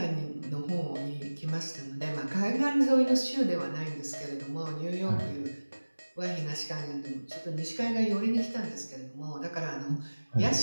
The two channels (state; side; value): inverted; both; correlation -1.00